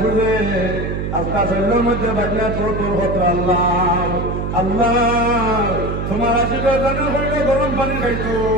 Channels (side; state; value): right; noise; hum, 3 dB below the sound